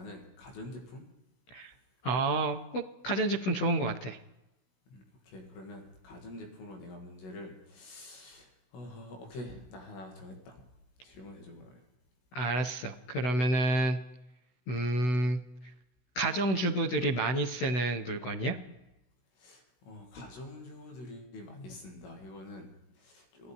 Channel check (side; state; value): right; late; 16 ms